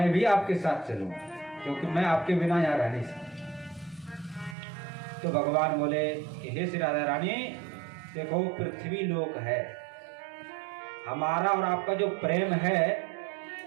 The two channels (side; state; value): left; drops out; at 4.5 s